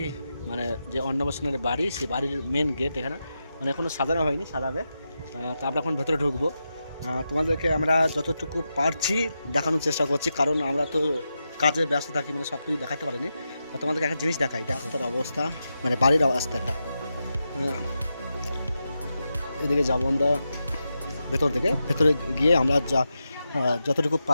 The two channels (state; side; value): inverted; both; correlation -0.88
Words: মানে যে অন্নপ্রাশনের বাড়ি, সেই বাড়ির মেন গেট এখানে, মানে এখনো সাজানো হয়নি, সাজাবে। তো আমরা এখন ভেতরে ঢুকবো। তোমাদেরকে আমরা যতটুকু পারছি দেখানোর চেষ্টা করছি, কারণ আমরা তো কাজে ব্যস্ত থাকি, মানে সব কিছু দেখাতে পারিনি। তোমাদেরকে একটা জিনিস দেখাই, দেখো তার অবস্থা, মানে বাড়ির অবস্থাটা। এদিকে যাবো আমরা ভেতর থেকে, ভেতরে গিয়ে আমরা যতটুকু